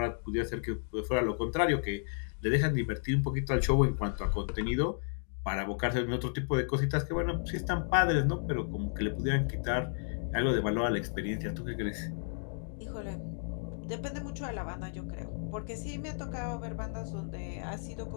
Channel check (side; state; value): right; silent; digital silence